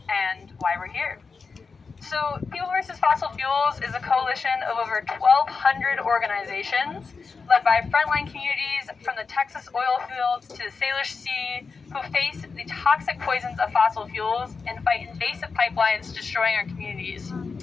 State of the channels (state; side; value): quieter; right; 4.8 dB